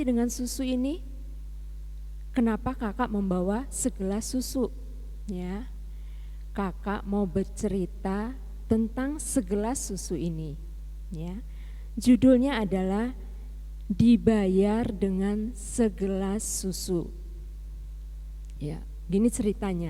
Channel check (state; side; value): identical; both; correlation 1.00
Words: dengan susu ini? Kenapa kakak membawa segelas susu? Ya, kakak mau bercerita tentang segelas susu ini. Ya, judulnya adalah Dibayar dengan Segelas Susu. Ya, gini